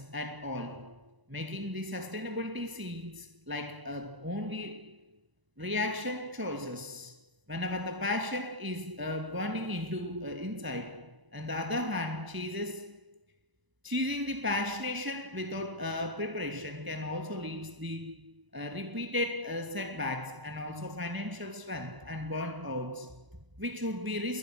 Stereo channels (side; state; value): left; late; 1.0 ms